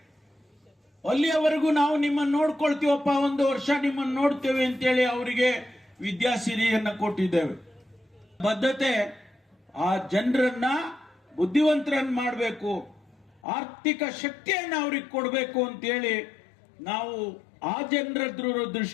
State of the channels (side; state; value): right; drops out; at 13.4 s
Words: ಅಲ್ಲಿಯವರೆಗೂ ನಾವು ನಿಮ್ಮನ್ನು ನೋಡ್ಕೊಳ್ತೀವಪ್ಪ, 1 ವರ್ಷ ನಿಮ್ಮನ್ನು ನೋಡ್ತೇವೆ ಅಂತೇಳಿ ಅವರಿಗೆ ವಿದ್ಯಾಸಿರಿಯನ್ನ ಕೊಟ್ಟಿದ್ದೇವೆ. ಬದ್ಧತೆ ಆ ಜನರನ್ನ ಬುದ್ಧಿವಂತರನ್ನ ಮಾಡಬೇಕು, ಆರ್ಥಿಕ ಶಕ್ತಿಯನ್ನ ಅವ್ರಿಗೆ ಕೊಡಬೇಕು ಅಂತೇಳಿ ನಾವು ಆ ಜನರ